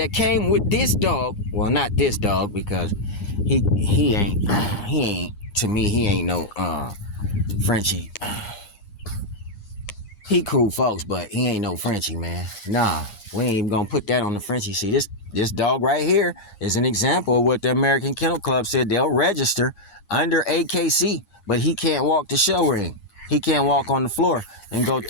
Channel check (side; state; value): right; late; 9.7 ms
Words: came with this dog, well, not this dog, because he ain't to me, he ain't no Frenchie. He cool folks, but he ain't no Frenchie, man. Nah, we ain't even gonna put that on the Frenchie. See, this dog right here is an example of what the American Kennel Club said they'll register under AKC, but he can't walk the show ring. He can't walk on the floor and go